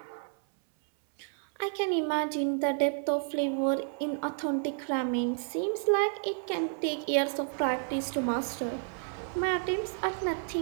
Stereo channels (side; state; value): left; silent; 57 dB below the other